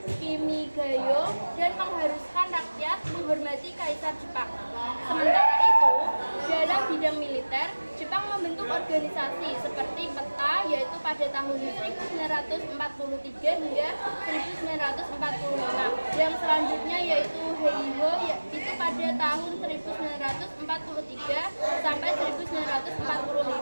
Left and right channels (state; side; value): inverted; both; correlation -1.00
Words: Kimigayo dan mengharuskan rakyat menghormati Kaisar Jepang. Sementara itu, dalam bidang militer, Jepang membentuk organisasi seperti PETA, yaitu pada tahun 1943 hingga 1945. Yang selanjutnya yaitu Heiho, itu pada tahun 1943 sampai